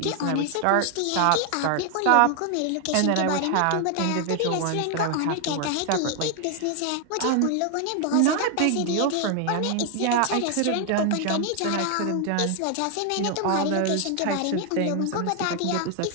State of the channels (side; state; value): both; different; correlation 0.00